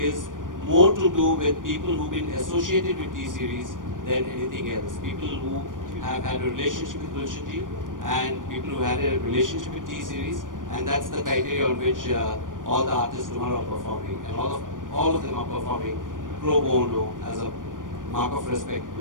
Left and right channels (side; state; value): left; late; 0.89 ms